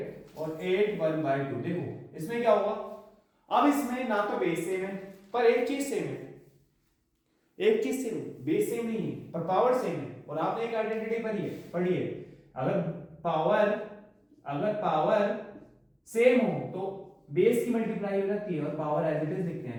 और 8 1/2। देखो इसमें क्या होगा, अब इसमें ना तो बेस सेम है पर एक चीज सेम है, एक चीज सेम है, बेस सेम नहीं है पर पावर सेम है। और आपने एक आइडेंटिटी पढ़ी है, अगर पावर सेम हो तो बेस की मल्टीप्लाई हो जाती है और पावर एज इट इज लिखते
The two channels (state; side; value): identical; both; correlation 1.00